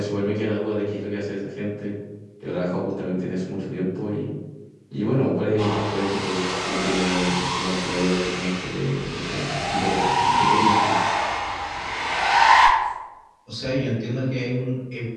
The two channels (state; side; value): identical; both; correlation 1.00